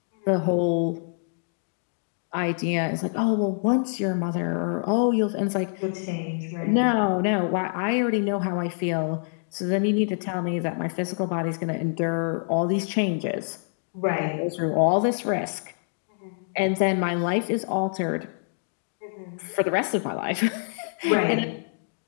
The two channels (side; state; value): right; silent; digital silence